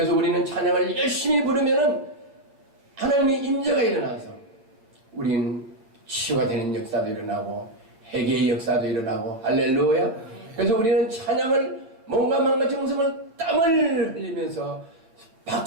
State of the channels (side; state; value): left; late; 8.8 ms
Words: 우리는 찬양을 열심히 부르면은 하나님의 임재가 일어나서 우리는 치유가 되는 역사도 일어나고 회개의 역사도 일어나고, 할렐루야. 그래서 우리는 찬양을 몸과 마음과 정성을 땀을 흘리면서